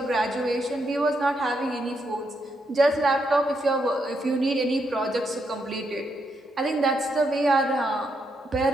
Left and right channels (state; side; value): normal; both; correlation 0.79